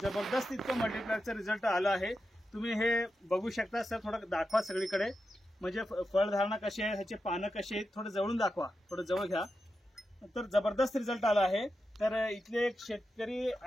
जबरदस्त इतकं मल्टीप्लायरचं रिझल्ट आलं आहे। तुम्ही हे बघू शकता सर, थोडं दाखवा सगळीकडे, म्हणजे फळधारणा कशी आहे, ह्याचे पानं कशी आहेत, थोडं जवळून दाखवा, थोडं जवळ घ्या। तर जबरदस्त रिझल्ट आला आहे। तर इथले एक शेतकरी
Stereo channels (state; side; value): normal; both; correlation 0.89